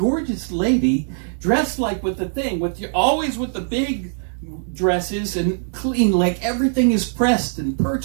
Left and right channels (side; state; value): left; silent; digital silence